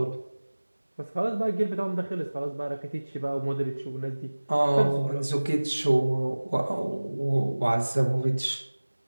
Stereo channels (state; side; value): inverted; both; correlation -1.00